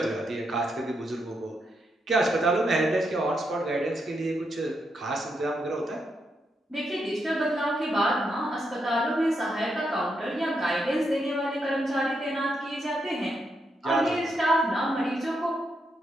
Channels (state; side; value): normal; both; correlation 0.81